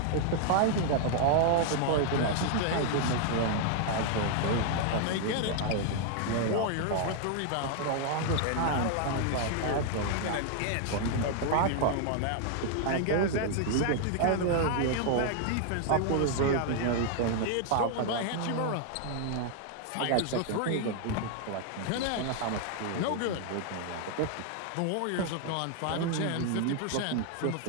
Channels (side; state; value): both; different; correlation 0.00